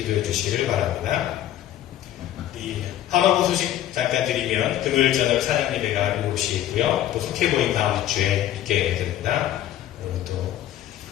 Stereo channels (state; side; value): quieter; right; 12.2 dB